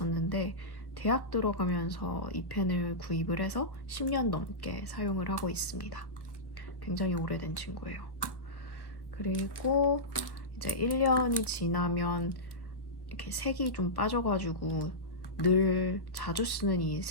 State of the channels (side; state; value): right; late; 1.3 ms